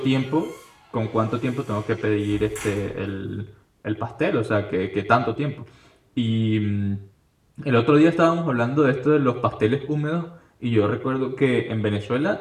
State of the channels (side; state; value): both; identical; correlation 1.00